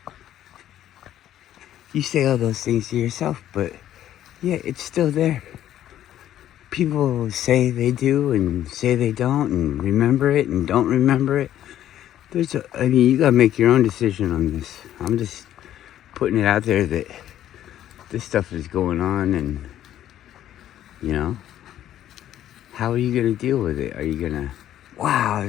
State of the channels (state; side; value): quieter; right; 11.8 dB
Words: you say all those things to yourself, but yeah, it's still there. People say they do and say they don't, and remember it and don't remember it. I mean, you gotta make your own decision on this. I'm just putting it out there that this stuff is going on, and, you know, how are you gonna deal with it? Are you gonna, wow,